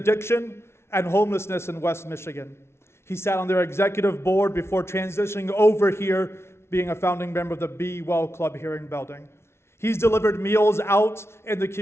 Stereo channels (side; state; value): right; late; 0.12 ms